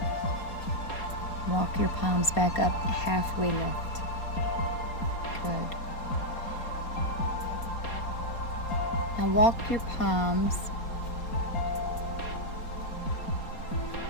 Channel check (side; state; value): right; late; 4.2 ms